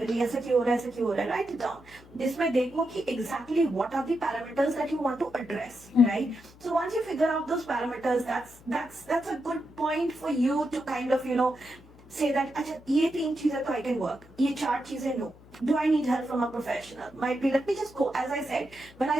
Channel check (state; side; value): noise; left; hum, 24 dB below the sound